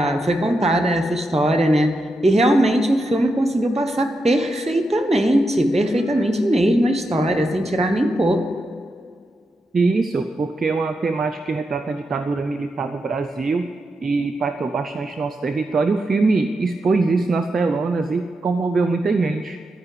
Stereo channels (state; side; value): normal; both; correlation 0.86